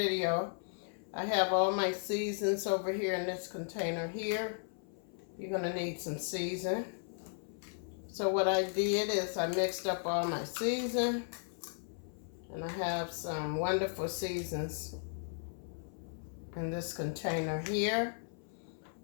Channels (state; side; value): silent; right; 54 dB below the other